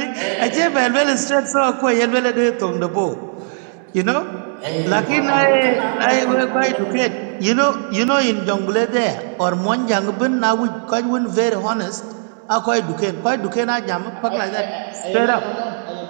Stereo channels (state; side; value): silent; left; digital silence